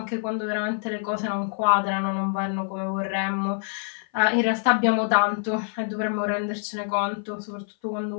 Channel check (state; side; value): silent; right; 56 dB below the other